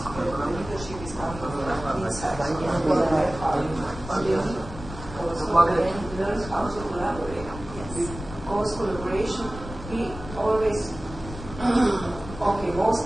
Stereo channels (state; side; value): noise; left; rumble, 12 dB below the sound